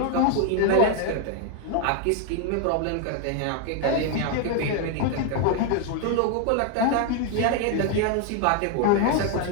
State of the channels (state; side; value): different; both; correlation 0.00